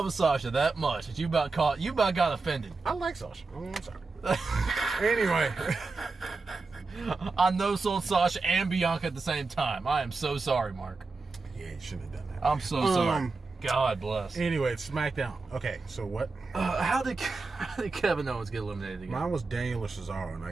with Sasha that much that you about got offended. I like Sasha. I'm sorry. Anyway, I know sold Sasha and Bianca at the same time. I am so sorry, Mark. yeah, you shouldn't have done that. I'm so sorry. God bless. Anyway, it's SmackDown. Okay, so what? How did Kevin Owens get eliminated again? Mine was Daniel or Cesaro, and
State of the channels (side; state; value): left; quieter; 3.9 dB